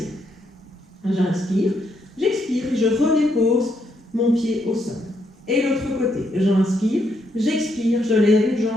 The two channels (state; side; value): normal; both; correlation 0.76